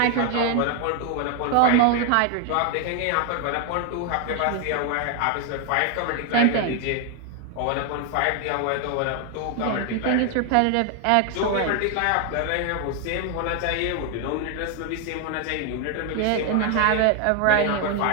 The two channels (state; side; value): different; both; correlation 0.01